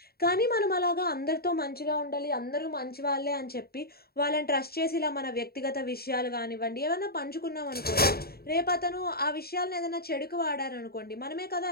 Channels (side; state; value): right; late; 0.45 ms